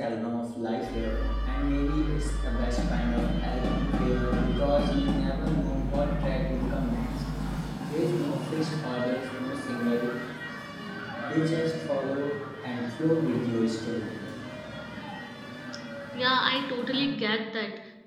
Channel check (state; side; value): identical; both; correlation 1.00